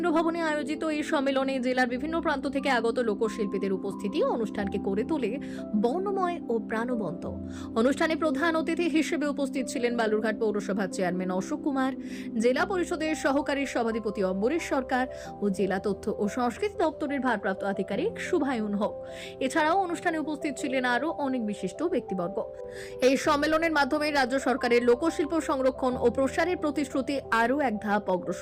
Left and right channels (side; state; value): both; identical; correlation 1.00